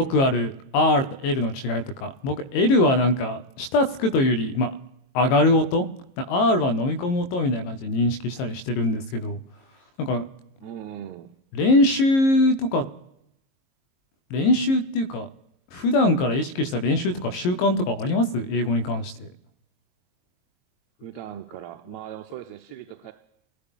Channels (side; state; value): right; late; 22 ms